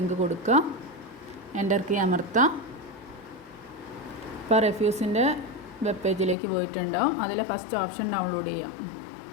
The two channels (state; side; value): drops out; right; at 6.4 s